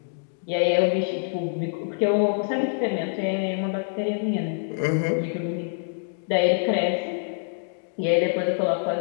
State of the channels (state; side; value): silent; right; digital silence